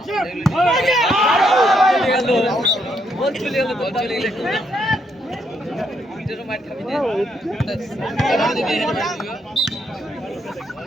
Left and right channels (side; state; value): both; normal; correlation 0.75